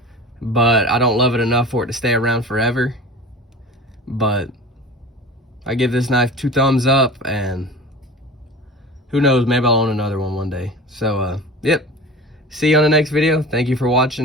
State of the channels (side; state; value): both; normal; correlation 0.36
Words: but I don't love it enough for it to stay around forever. But I give this knife 2 thumbs up, and who knows, maybe I'll own another one day. So yep, see you on the next video. Thank you for